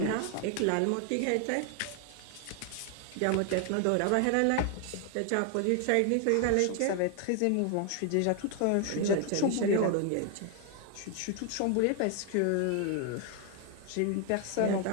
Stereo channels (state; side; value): different; both; correlation 0.00